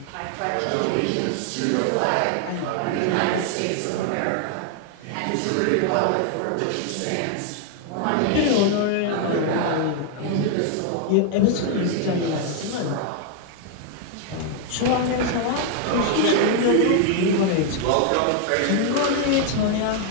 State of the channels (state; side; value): different; both; correlation 0.00